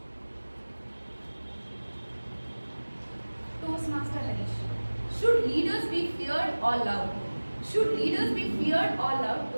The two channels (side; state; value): both; inverted; correlation -1.00